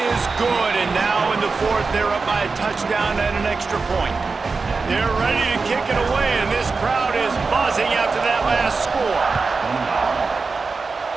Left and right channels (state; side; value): quieter; left; 4.3 dB